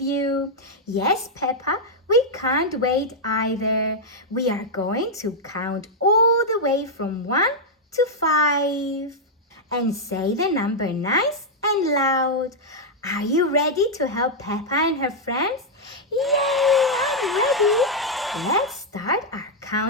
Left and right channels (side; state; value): both; normal; correlation -0.04